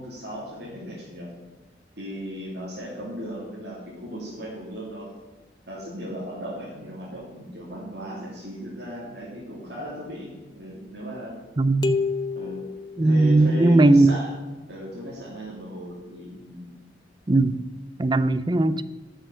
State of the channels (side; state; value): both; normal; correlation 0.85